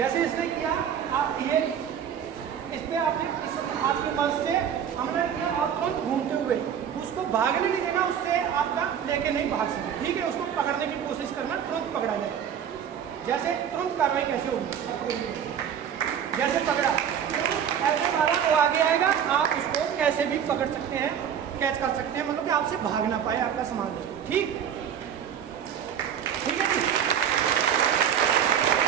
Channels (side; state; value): left; quieter; 8.6 dB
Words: इसने किया, आप ये इस पर आपने इस हाथ की मदद से हमला किया, आप तुरंत घूमते हुए उसको भागने नहीं देना, उससे आपका लेके नहीं भाग सके। ठीक है, उसको पकड़ने की कोशिश करना, तुरंत पकड़ा जाए। जैसे तुरंत कार्रवाई कैसे होगी, जैसे पकड़ा ऐसे मारा, वो आगे आएगा, आप उसको कैसे भी पकड़ सकते हैं, कैच कर सकते हैं, मतलब कि आपसे भाग ना पाए आपका सामान। ठीक, ठीक है जी।